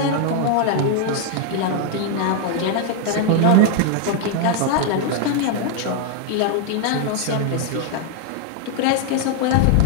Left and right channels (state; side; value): different; both; correlation 0.00